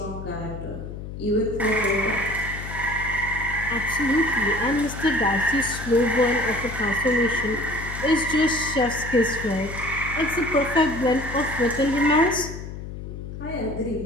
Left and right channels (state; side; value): noise; left; hum, 9 dB below the sound